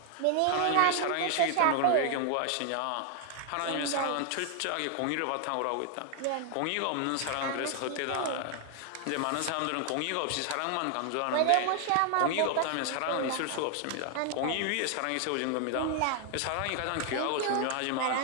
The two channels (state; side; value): different; both; correlation 0.00